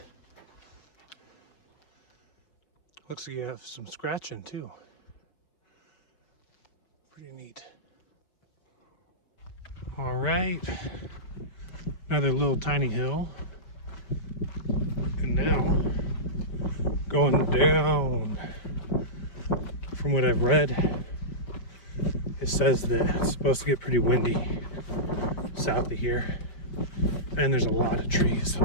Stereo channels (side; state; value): right; late; 5.4 ms